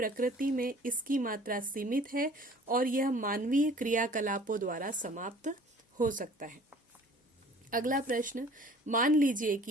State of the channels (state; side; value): normal; both; correlation 0.50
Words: में इसकी मात्रा सीमित है और यह मानवीय क्रियाकलापों द्वारा समाप्त हो सकता है। अगला प्रश्न, मान लीजिए